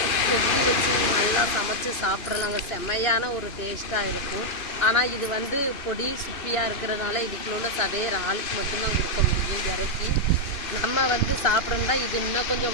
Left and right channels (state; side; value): late; right; 2.6 ms